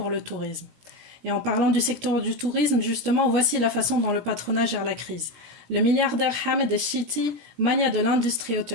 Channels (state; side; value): late; left; 17 ms